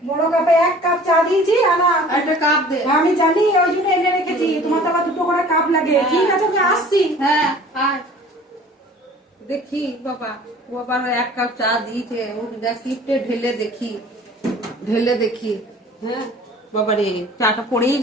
বড় কাপে 1 কাপ চা দিয়েছি, আনা একটা কাপ দে। আমি জানি, ওই জন্য এনে রেখেছি, তোমার তো আবার 2টো করে কাপ লাগে। ঠিক আছে আমি আসছি। হ্যাঁ আয় দেখি বাবা, ও আবার 1 কাপ চা দিয়েছে, ও শিফটে ঢেলে দেখি, ঢেলে দেখি। হ্যাঁ বাবা রে, চাটা পড়েই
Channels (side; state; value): both; normal; correlation 0.47